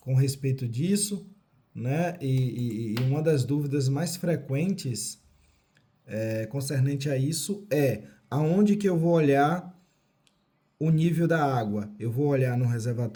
com respeito disso, né? E uma das dúvidas mais frequentes concernente a isso é aonde que eu vou olhar o nível da água? Eu vou olhar no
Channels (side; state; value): both; identical; correlation 1.00